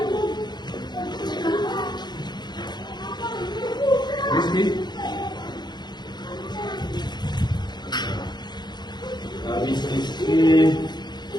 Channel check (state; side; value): late; right; 0.21 ms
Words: Rizky. Habis Rizky.